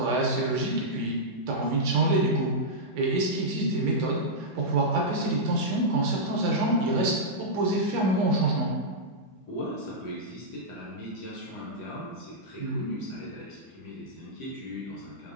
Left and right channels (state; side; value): normal; both; correlation -0.10